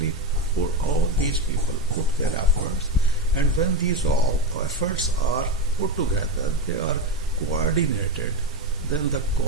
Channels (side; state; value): both; normal; correlation 0.15